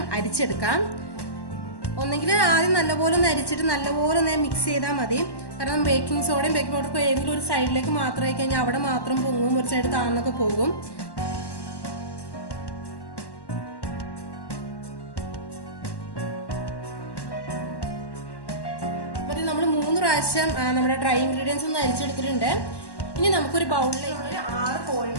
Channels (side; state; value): right; late; 1.1 ms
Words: അരിച്ചെടുക്കാം. ഒന്നെങ്കിൽ ആദ്യം നല്ലപോലെ ഒന്ന് അരിച്ചിട്ട് നല്ലപോലെ ഒന്ന് മിക്സ് ചെയ്താൽ മതി. കാരണം ബേക്കിംഗ് സോഡയും ബേക്കിംഗ് പൗഡറും ഏതെങ്കിലും ഒരു സൈഡിലേക്ക് മാത്രമായി കഴിഞ്ഞാൽ അവിടെ മാത്രം പൊങ്ങും, ഒരു സൈഡ് താഴ്ന്നൊക്കെ പോകും. അപ്പോൾ നമ്മൾ 3 പ്രാവശ്യം നമ്മുടെ ഡ്രൈ ഇൻഗ്രീഡിയൻസ് ഒന്ന് അരിച്ചെടുത്തിട്ടുണ്ട്. ഇനി നമുക്കൊരു ബൗളിലേക്ക് 6